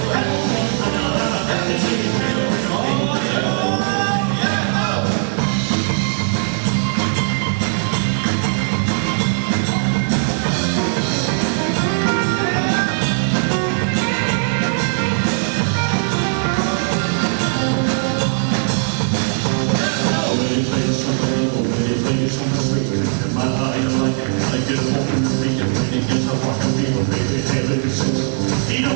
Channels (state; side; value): silent; left; 63 dB below the other